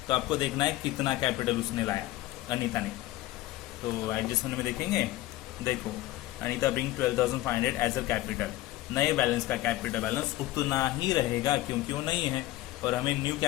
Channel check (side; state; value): right; quieter; 16.6 dB